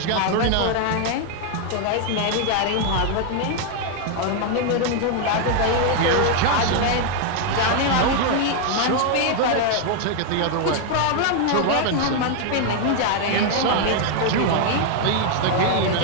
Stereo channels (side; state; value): both; different; correlation 0.00